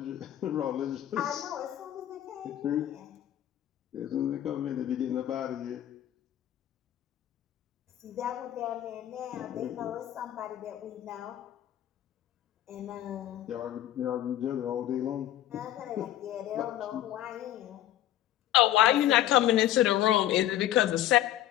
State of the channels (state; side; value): quieter; right; 12.7 dB